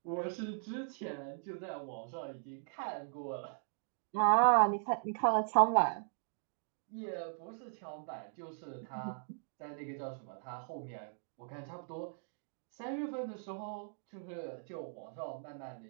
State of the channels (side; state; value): left; silent; digital silence